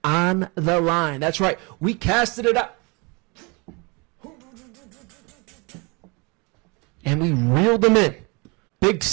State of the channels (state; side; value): quieter; left; 29.2 dB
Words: on the line. That's right. We casted it up. And we reeled him in. Big,